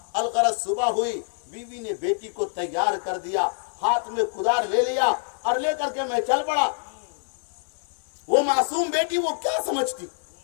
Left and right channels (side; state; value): right; silent; digital silence